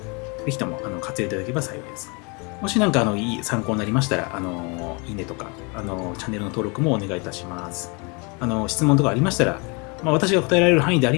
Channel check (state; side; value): quieter; right; 31.2 dB